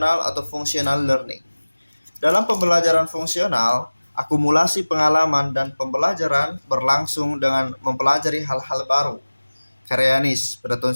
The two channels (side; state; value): both; inverted; correlation -1.00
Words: atau functional learning. Dalam pembelajaran fungsional, akumulasi pengalaman dan pembelajaran berlangsung dengan mempelajari hal-hal baru. Karayanis pada